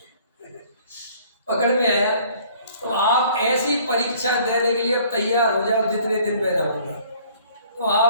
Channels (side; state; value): both; inverted; correlation -0.56